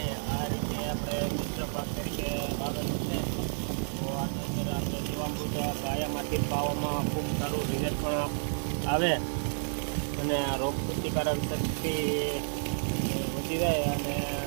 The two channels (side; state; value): left; silent; 57 dB below the other